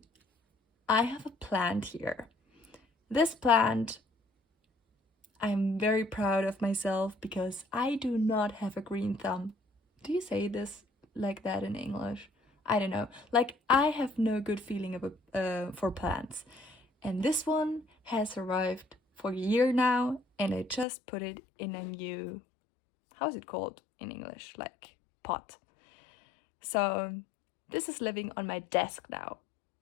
I have a plant here. This plant, I'm very proud of myself because I do not have a green thumb. Do you say this like that in English? I don't know. Like, I have no good feeling for plants. And this one has survived for a year now, and I just put it in a new, how's it called in English? Like, pot. So this is living on my desk now,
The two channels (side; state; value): right; drops out; at 20.9 s